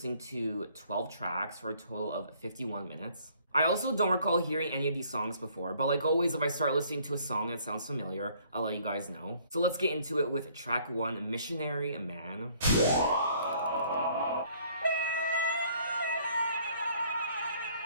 to 12 tracks for a total of 51 minutes. I also don't recall hearing any of these songs before, but like always, if I start listening to a song that sounds familiar, I'll let you guys know. So let's get into it with track 1, Missionary Man.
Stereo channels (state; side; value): inverted; both; correlation -0.61